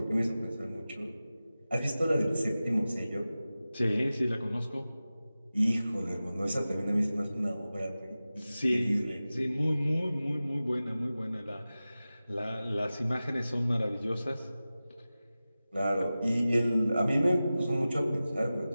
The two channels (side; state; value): both; inverted; correlation -0.96